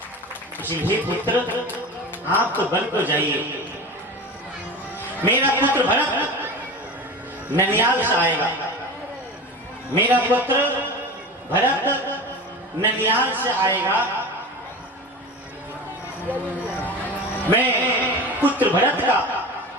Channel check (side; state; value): both; normal; correlation 0.31